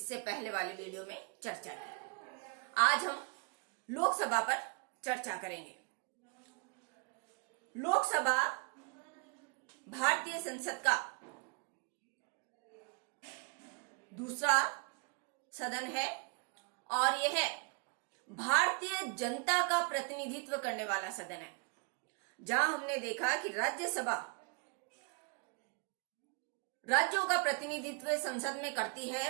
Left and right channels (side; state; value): left; quieter; 33.1 dB